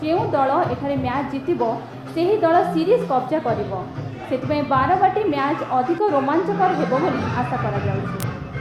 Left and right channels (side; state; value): both; identical; correlation 1.00